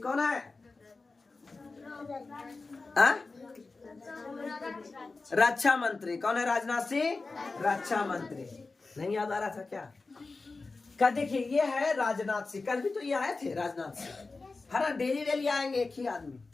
कौन है, रक्षा मंत्री। कौन है राजनाथ सिंह, रक्षा मंत्री। नहीं याद आ रहा था क्या देखिए ये है राजनाथ सिंह, कल भी तो ये आए थे राजनाथ सिंह, है ना। डेली आएंगे एक ही आदमी,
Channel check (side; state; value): right; quieter; 3.8 dB